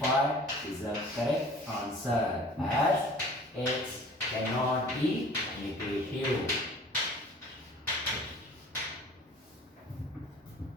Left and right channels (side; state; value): both; normal; correlation 0.47